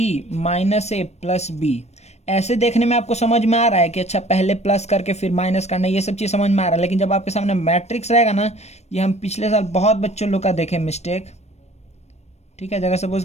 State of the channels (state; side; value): late; right; 0.31 ms